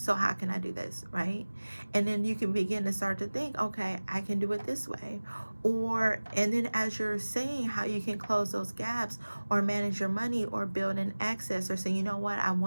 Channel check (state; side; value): inverted; both; correlation -1.00